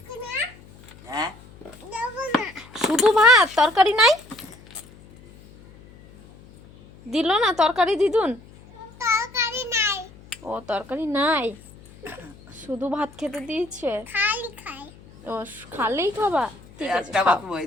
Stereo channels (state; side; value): noise; left; hum, 23 dB below the sound